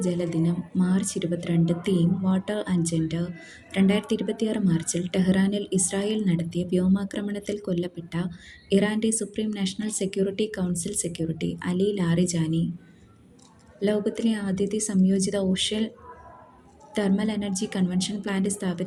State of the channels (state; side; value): identical; both; correlation 1.00